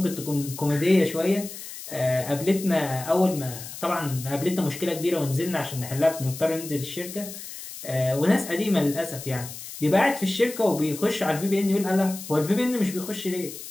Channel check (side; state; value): left; noise; hiss, 12 dB below the sound